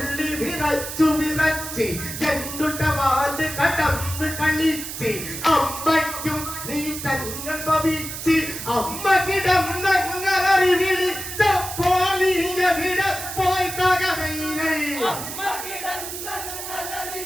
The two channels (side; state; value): right; noise; hiss, 8 dB below the sound